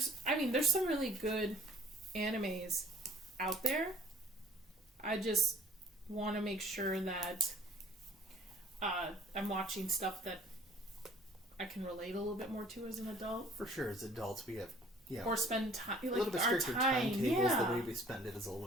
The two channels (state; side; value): normal; both; correlation 0.53